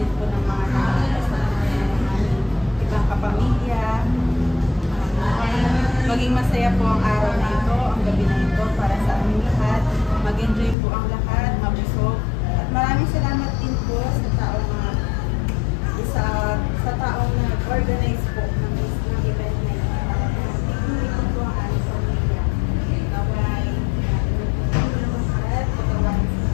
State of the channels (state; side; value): drops out; right; at 10.8 s